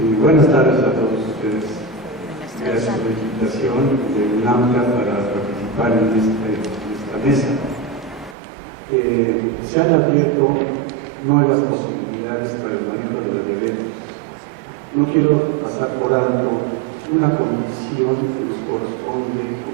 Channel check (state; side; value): drops out; left; at 8.3 s